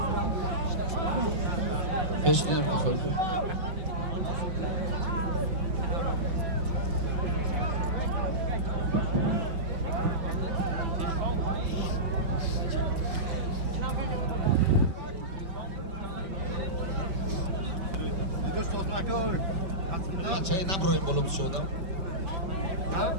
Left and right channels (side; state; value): left; late; 5.5 ms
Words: پش نیم بخور چای نبرویم بالا بشودم